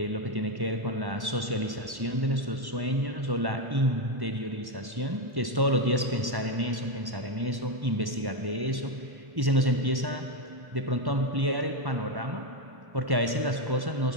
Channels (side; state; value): left; late; 1.1 ms